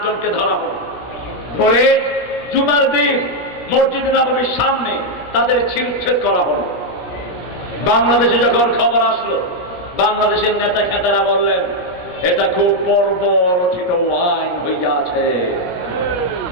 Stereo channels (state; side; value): late; right; 17 ms